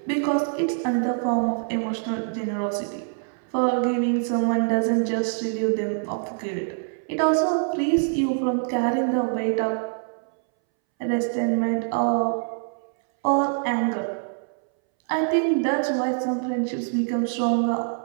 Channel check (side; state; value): left; silent; 62 dB below the other